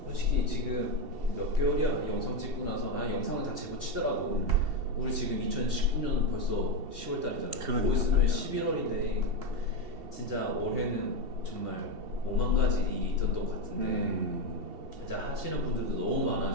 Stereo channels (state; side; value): late; left; 2.7 ms